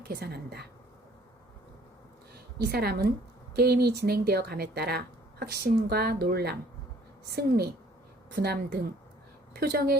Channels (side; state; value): both; normal; correlation 0.57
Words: 계산한다. 이 사람은 게임이 진행되어 감에 따라 확신과 놀람, 승리, 분함 등